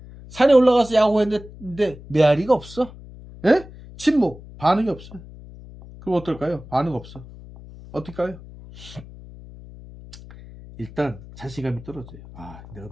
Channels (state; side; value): noise; left; hum, 17 dB below the sound